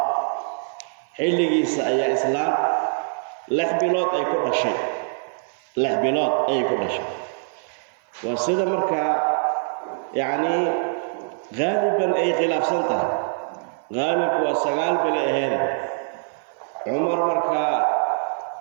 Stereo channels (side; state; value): left; silent; 56 dB below the other